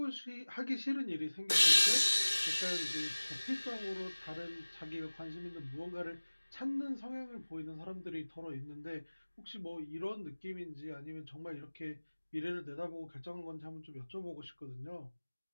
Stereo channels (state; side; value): inverted; both; correlation -1.00